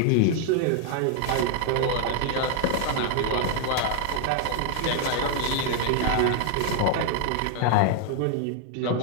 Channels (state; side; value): different; both; correlation 0.00